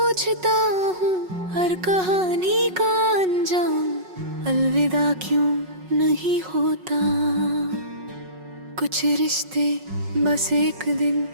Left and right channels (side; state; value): left; late; 5.4 ms